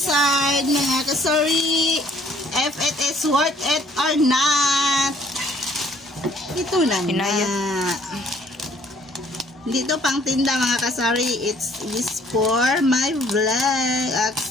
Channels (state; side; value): normal; both; correlation 0.60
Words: mga kasari. If it is worth it or not. Ito na nga. Dito pang tinda mga kasari. It's for my vlog